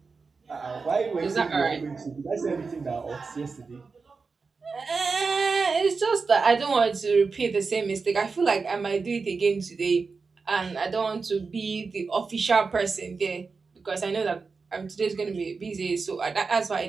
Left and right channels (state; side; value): quieter; left; 4.6 dB